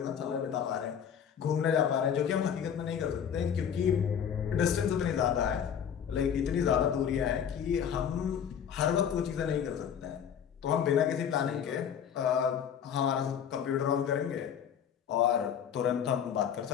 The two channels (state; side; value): quieter; right; 8.3 dB